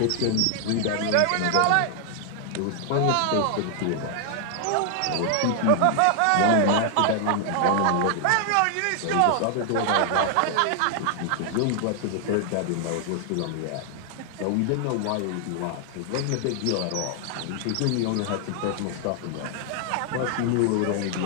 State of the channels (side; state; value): both; different; correlation 0.00